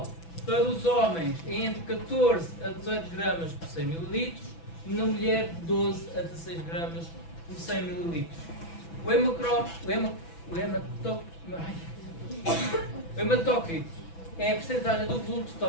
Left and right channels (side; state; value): right; late; 6.0 ms